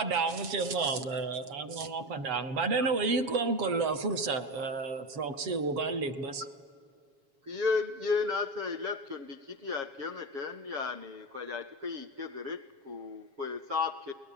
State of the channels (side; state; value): left; late; 7.3 ms